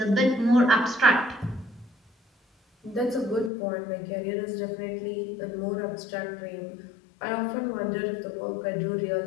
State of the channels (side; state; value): right; drops out; at 3.5 s